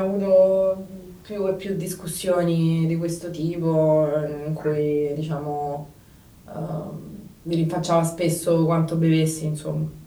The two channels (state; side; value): identical; both; correlation 1.00